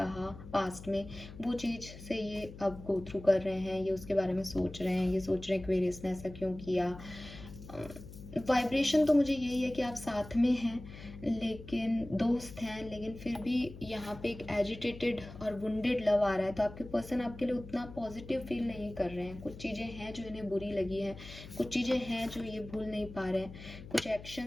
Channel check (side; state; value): left; noise; hum, 14 dB below the sound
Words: पास्ट में, वो चीज़ से ये अब गो थ्रू कर रहे हैं, ये उसके बारे में सोच रहे हैं, ये सोच रहे हैं एक्वेरियस ने ऐसा क्यों किया। वाइब्रेशन तो मुझे यही है कि आप साथ में हैं, लेकिन दोस्त हैं, लेकिन फिर भी यहाँ पे एक एजिटेटेड और वुंडेड लव आ रहा है। तो आपके पर्सन आपके लिए उतना पॉजिटिव फील नहीं कर रहे हैं। कुछ चीज़ें हैं जो इन्हें बुरी लगी हैं, कुछ चीज़ें हैं जो ये भूल नहीं पा रहे हैं, कुछ